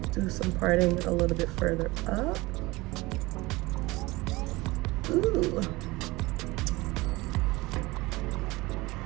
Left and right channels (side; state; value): left; quieter; 21.6 dB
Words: do some parting a little bit further up. Ooh.